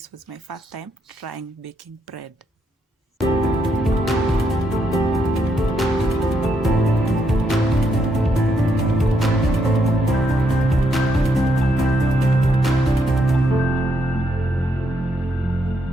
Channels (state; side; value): normal; both; correlation 0.77